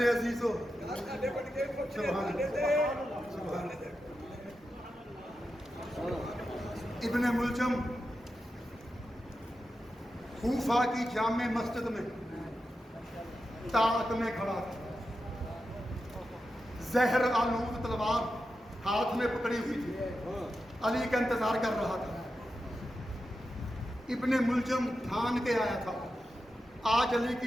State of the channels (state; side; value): normal; both; correlation 0.89